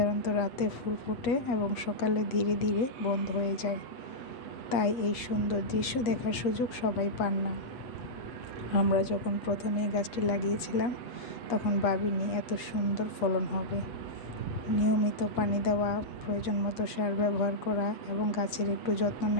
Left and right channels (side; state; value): right; late; 8.1 ms